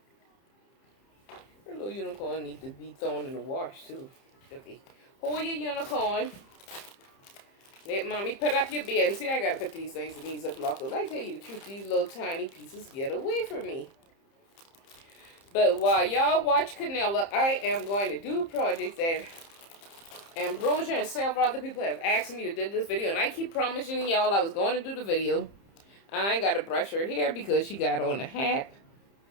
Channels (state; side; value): late; right; 30 ms